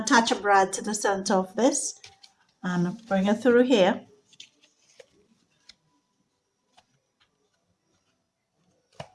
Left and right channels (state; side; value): identical; both; correlation 1.00